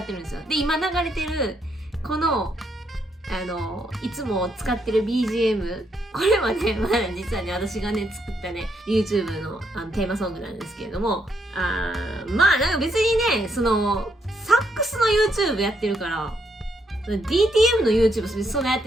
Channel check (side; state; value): both; normal; correlation 0.75